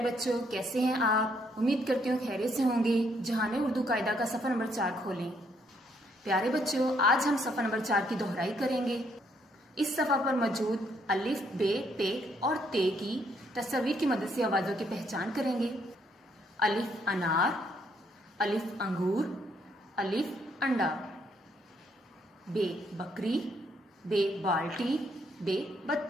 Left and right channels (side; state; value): both; normal; correlation 0.71